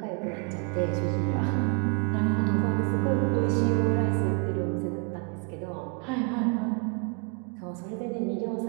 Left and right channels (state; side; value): quieter; left; 36.2 dB